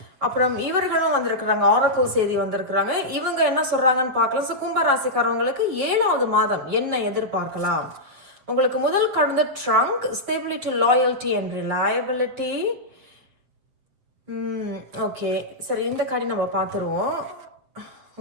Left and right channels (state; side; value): late; left; 7.8 ms